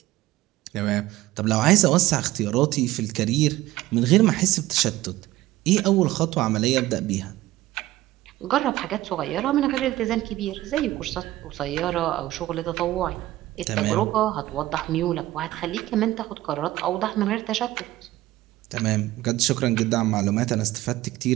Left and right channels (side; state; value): left; quieter; 16.3 dB